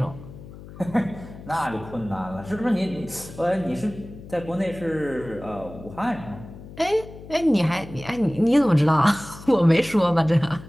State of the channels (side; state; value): left; noise; hum, 16 dB below the sound